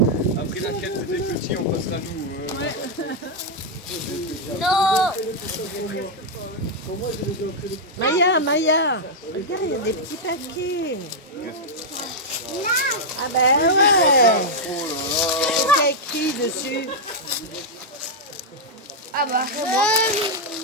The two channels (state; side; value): normal; both; correlation -0.03